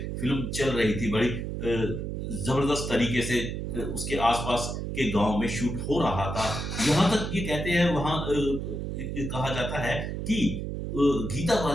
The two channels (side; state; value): right; noise; hum, 4 dB below the sound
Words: फिल्म चल रही थी। बड़ी जबरदस्त तरीके से उसके आसपास के गांव में शूट हो रहा था। यहाँ तक ये कहते हैं, वहां कहा जाता है कि गीता